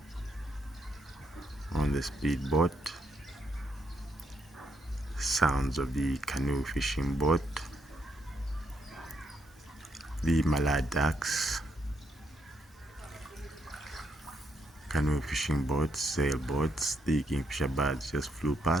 on the speedboat. Sounds of the canoe fishing boat, the Mallard ducks, canoe fishing boats, sailboats. The kingfisher birds just flew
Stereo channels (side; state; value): both; normal; correlation 0.76